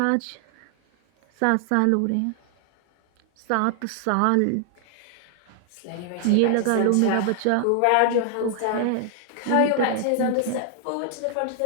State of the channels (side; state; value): both; different; correlation 0.00